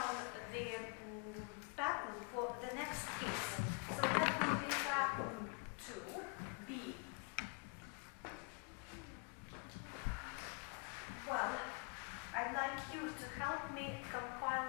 the pattern for the next case. So that will be pattern 2B. Well, I'd like you to help me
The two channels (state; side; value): quieter; right; 33.3 dB